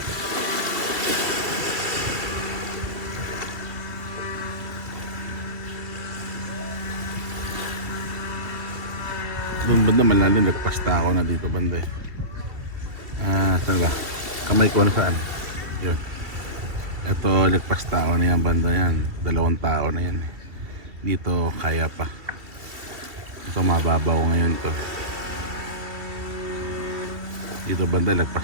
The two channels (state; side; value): late; left; 2.7 ms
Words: banda malalim, nagpasta ako na dito banda eh. Saan ba? Kamay ko na saan? Yun. Ito, nagpasta ako na yan banda yan. 2 tao na yan eh. Dito, kaya pa. Ito, mababaw ngayon to. Dito banda,